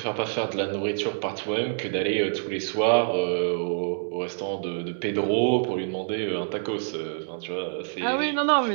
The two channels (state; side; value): silent; left; digital silence